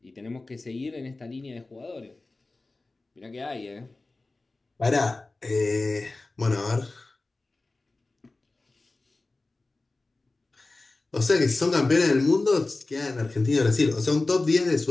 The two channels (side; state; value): right; quieter; 3.2 dB